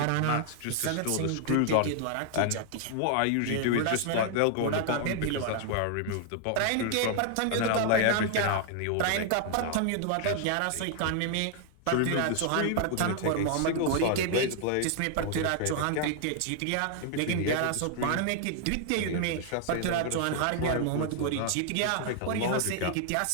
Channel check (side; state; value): both; different; correlation 0.00